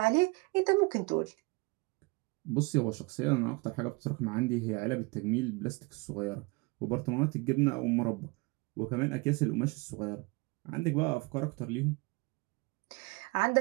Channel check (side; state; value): left; quieter; 27.0 dB